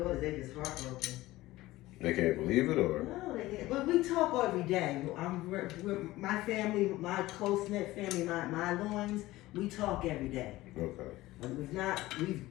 they just heartbroken. They can't believe it, or? No, they can't. But we talk every day. We're my family, my close-knit family, my loins, we talk every day. Okay. We've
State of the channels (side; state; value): right; quieter; 17.7 dB